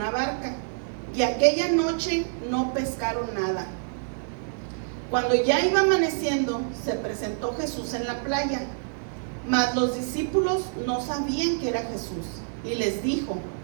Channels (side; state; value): left; silent; 60 dB below the other